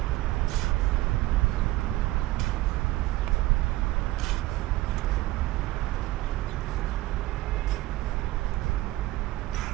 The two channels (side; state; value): left; quieter; 17.5 dB